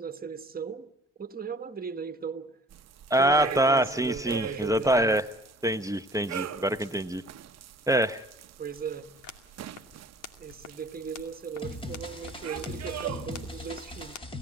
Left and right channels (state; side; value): normal; both; correlation 0.50